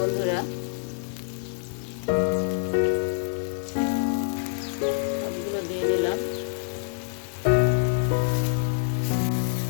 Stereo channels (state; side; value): silent; right; 61 dB below the other